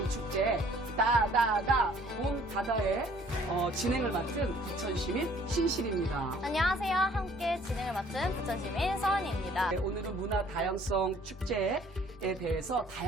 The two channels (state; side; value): normal; both; correlation 0.57